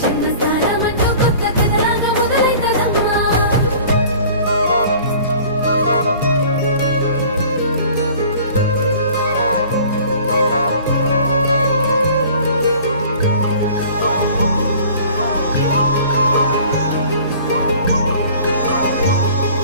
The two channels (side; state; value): both; inverted; correlation -0.48